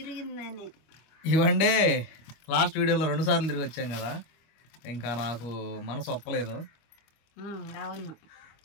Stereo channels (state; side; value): late; right; 25 ms